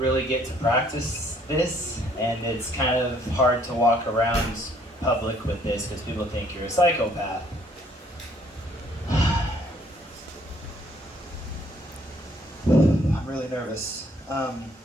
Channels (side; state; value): both; normal; correlation 0.63